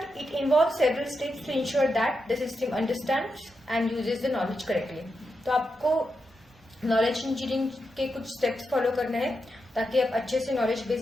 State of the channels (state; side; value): normal; both; correlation 0.86